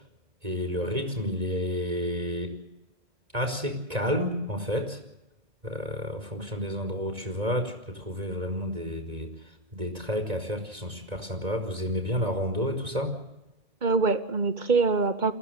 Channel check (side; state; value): left; late; 1.9 ms